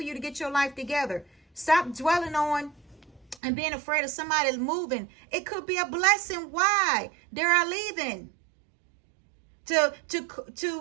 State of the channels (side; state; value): left; drops out; at 3.4 s